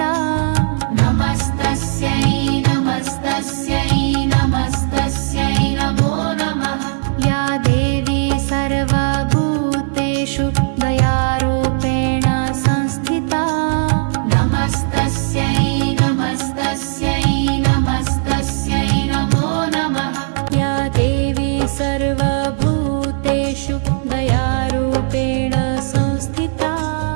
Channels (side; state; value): left; silent; 61 dB below the other